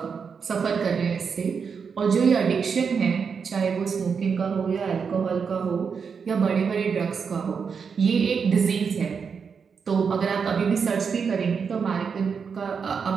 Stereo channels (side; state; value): left; quieter; 6.0 dB